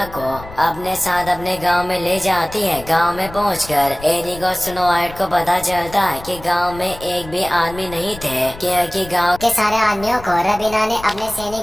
को अपने साथ अपने गांव में ले जाती है। गांव में पहुंचकर एरिक और स्नो वाइट को पता चलता है कि गांव में एक भी आदमी नहीं थे, क्योंकि गांव के सारे आदमियों को रबीना ने अपने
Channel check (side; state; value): left; noise; rumble, 16 dB below the sound